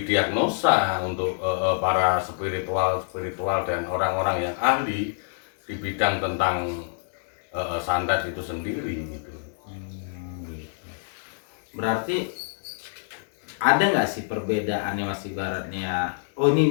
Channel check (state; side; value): silent; right; digital silence